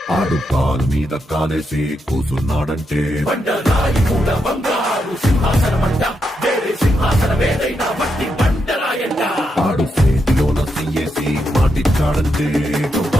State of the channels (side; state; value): both; normal; correlation 0.83